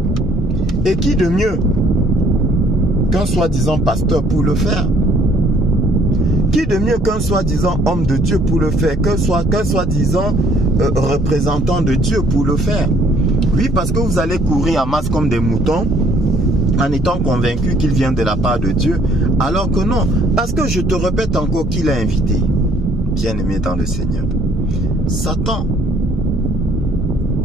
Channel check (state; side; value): normal; both; correlation 0.62